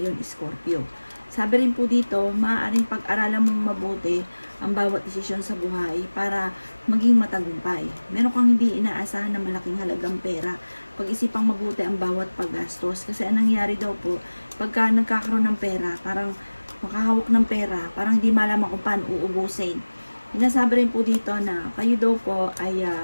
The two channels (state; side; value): inverted; both; correlation -1.00